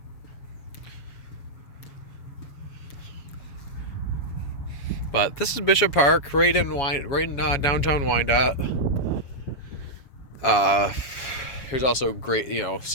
But this is Bishop Park, right in downtown Wyandotte. There's also great,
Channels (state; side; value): late; right; 7.1 ms